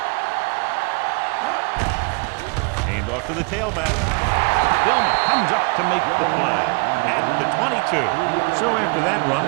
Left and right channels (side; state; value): left; quieter; 32.6 dB